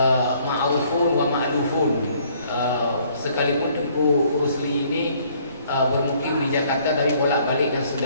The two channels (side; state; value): both; inverted; correlation -0.62